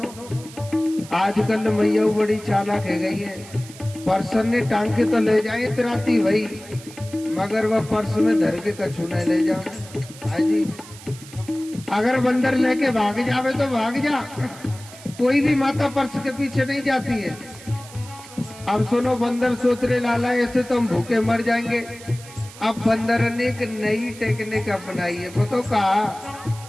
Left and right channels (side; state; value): right; noise; hiss, 18 dB below the sound